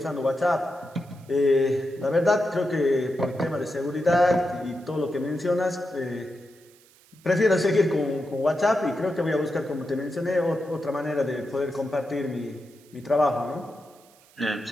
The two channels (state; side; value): noise; right; hiss, 28 dB below the sound